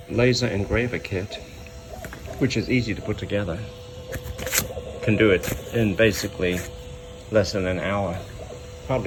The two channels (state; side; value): identical; both; correlation 1.00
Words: laser engraver kit, which is easy to put together. Can do it in basically less than an hour,